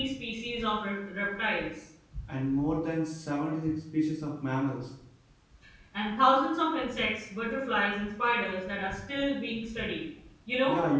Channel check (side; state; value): both; identical; correlation 1.00